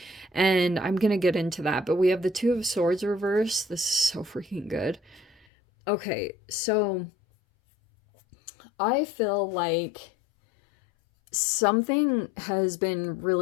And I'm going to get into that. But we have the 2 of Swords reverse. This is so freaking good. Okay, so I feel like something has been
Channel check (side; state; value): right; drops out; at 5.5 s